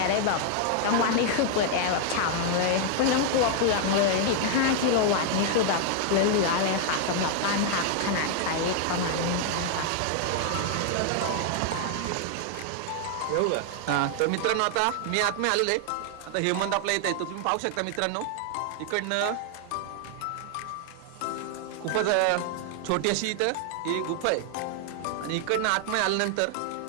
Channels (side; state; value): both; different; correlation 0.00